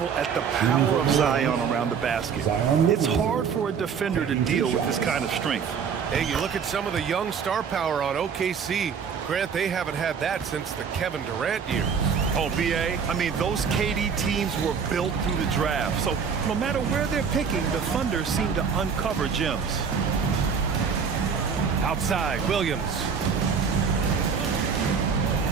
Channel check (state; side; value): quieter; left; 6.4 dB